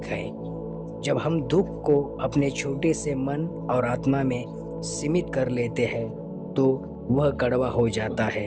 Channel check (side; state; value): both; identical; correlation 1.00